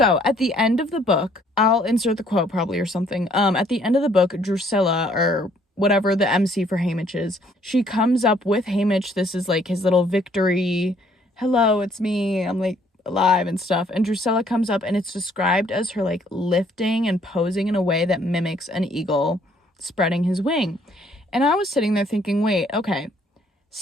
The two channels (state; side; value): normal; both; correlation 0.64